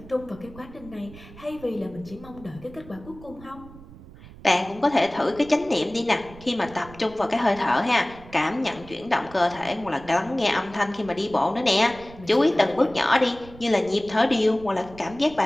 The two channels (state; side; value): noise; right; rumble, 19 dB below the sound